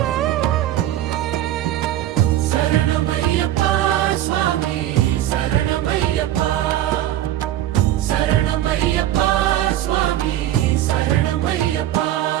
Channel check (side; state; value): left; quieter; 13.1 dB